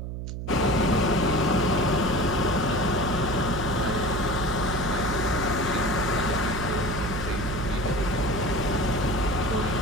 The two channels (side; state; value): right; noise; hum, 6 dB below the sound